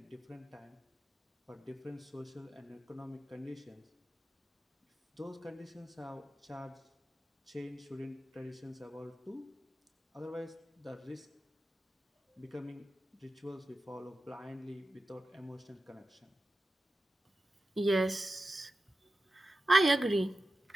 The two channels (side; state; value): both; normal; correlation 0.93